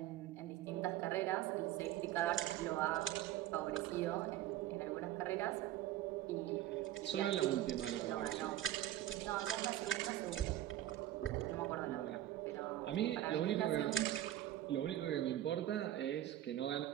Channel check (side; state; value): left; quieter; 13.2 dB